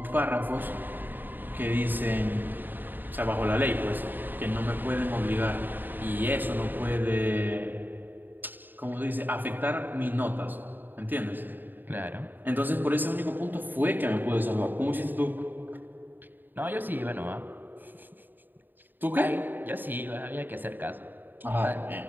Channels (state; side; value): late; left; 0.091 ms